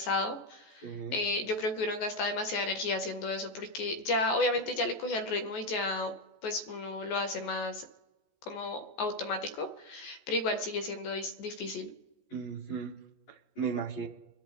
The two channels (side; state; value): right; late; 14 ms